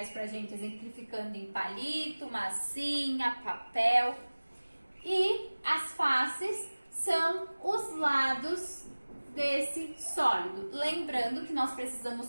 pra gente exemplificando em palito, massinha, papel. E as faces são os lados desse sólido. Lembrando que nós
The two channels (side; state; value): both; inverted; correlation -1.00